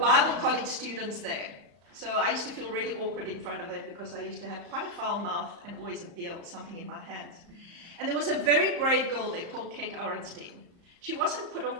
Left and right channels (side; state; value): left; late; 34 ms